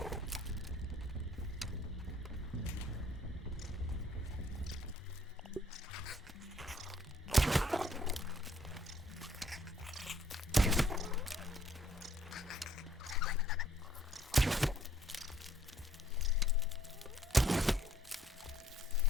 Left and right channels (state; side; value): normal; both; correlation 0.63